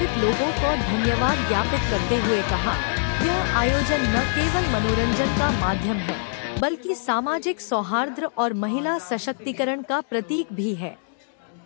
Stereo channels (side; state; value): right; silent; digital silence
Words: लोगों को धन्यवाद ज्ञापित करते हुए कहा, यह आयोजन न केवल मनोरंजन का माध्यम है बल्कि सामाजिक सौहार्द और महिला सशक्तिकरण का प्रतीक भी है।